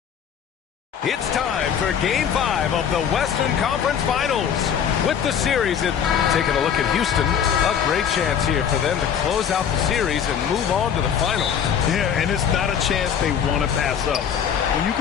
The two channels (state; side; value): quieter; right; 8.1 dB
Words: It's time for Game 5 of the Western Conference Finals. With the series, taking a look at Houston, a great chance here for them to close out the series and move on to the finals. Yeah, and it's not a chance they want to pass up. When you